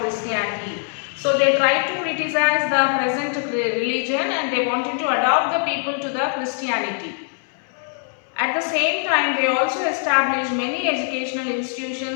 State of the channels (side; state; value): right; silent; 61 dB below the other